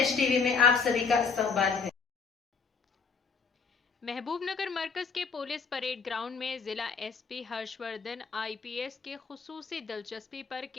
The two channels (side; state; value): right; quieter; 5.4 dB